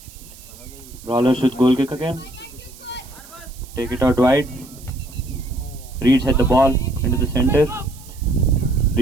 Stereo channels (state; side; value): noise; right; hiss, 21 dB below the sound